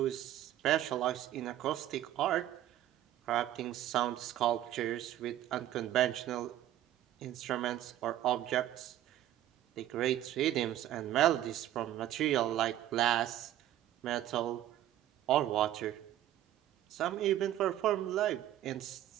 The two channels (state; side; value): quieter; left; 12.9 dB